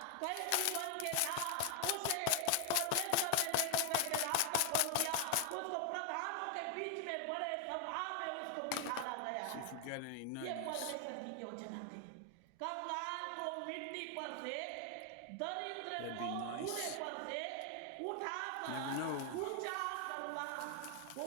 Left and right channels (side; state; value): both; different; correlation 0.00